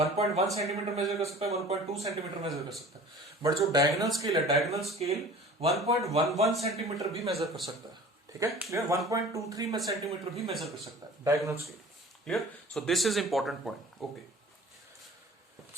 सेंटीमीटर मेजर कर सकता है, 1.2 सेंटीमीटर मेजर कर सकता है. बट जो डायगोनल स्केल है, डायगोनल स्केल 1.11 सेंटीमीटर भी मेजर कर सकता है. ठीक है, क्लियर. 1.23 सेंटीमीटर भी मेजर कर सकता है diagonal scale. Clear. So this is important point. Okay,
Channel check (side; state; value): both; normal; correlation 0.44